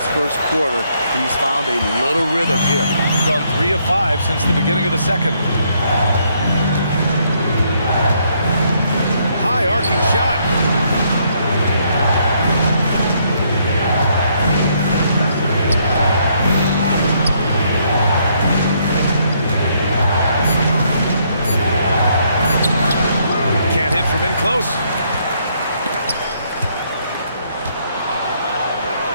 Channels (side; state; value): both; inverted; correlation -0.71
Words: first quarter, he's found a little rhythm here. Gone 3 of 5 since the beginning of the second. High arcing shot. Can't hit from in close.